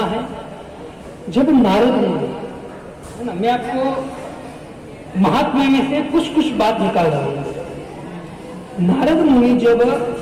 है, जब नारद मुनि है ना, मैं आपको महात्मा में से कुछ कुछ बात निकाल रहा हूं। नारद मुनि जब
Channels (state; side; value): identical; both; correlation 1.00